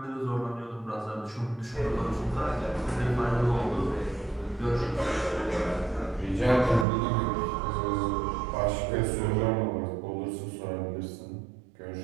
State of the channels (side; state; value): left; drops out; at 6.9 s